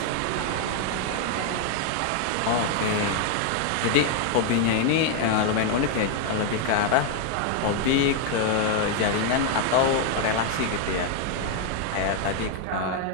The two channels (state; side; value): different; both; correlation 0.00